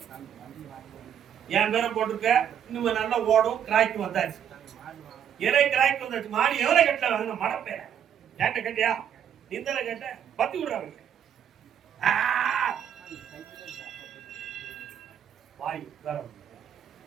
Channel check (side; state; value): left; quieter; 9.1 dB